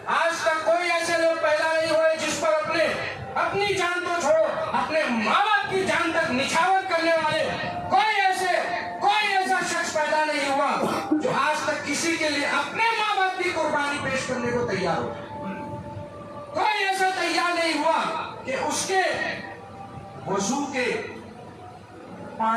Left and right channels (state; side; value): identical; both; correlation 1.00